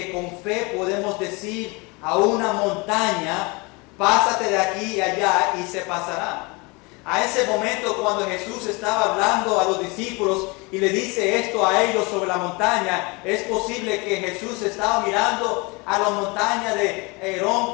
con fe podemos decir a una montaña, pásate de aquí y allá y se pasará. A ese momento cuando Jesús estaba hablando a los discípulos y le dice esto a ellos sobre la montaña, es posible que Jesús estaba mirando a la montaña de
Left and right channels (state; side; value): quieter; right; 27.4 dB